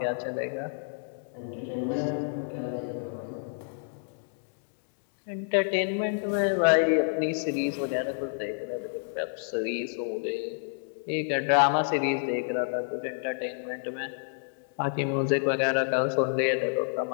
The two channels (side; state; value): right; silent; digital silence